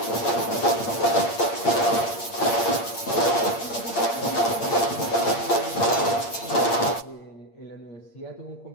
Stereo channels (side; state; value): right; late; 8.6 ms